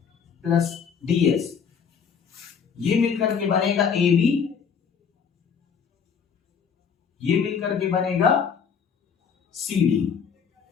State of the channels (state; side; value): quieter; right; 6.7 dB